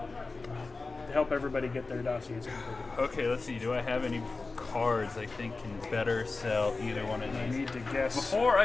everybody get their dossiers completed. Okay, let's see. Do I have any cards I think can better sell either one of I these? need to guess. Before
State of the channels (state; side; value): quieter; right; 3.8 dB